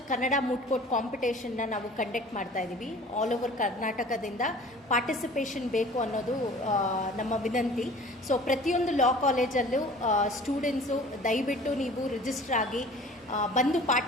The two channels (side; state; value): both; normal; correlation 0.46